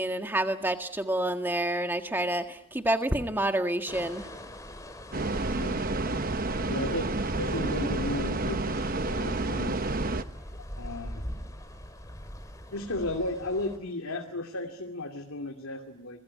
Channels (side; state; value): both; normal; correlation 0.45